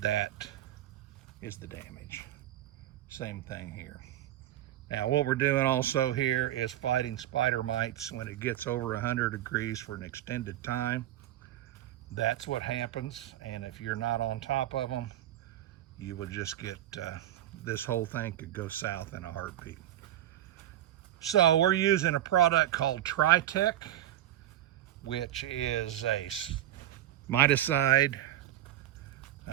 is the damage. Same thing here. Now what we're doing also here is fighting spider mites when it gets over 100 degrees for an extended time. That's what happens, and if you're not on top of them, you will just get, this whole thing could go south in a heartbeat. So we're using a product called Tritech, which is a miticide,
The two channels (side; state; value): left; quieter; 12.8 dB